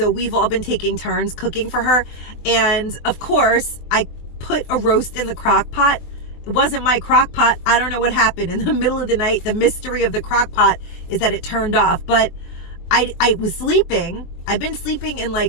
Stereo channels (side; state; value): right; late; 23 ms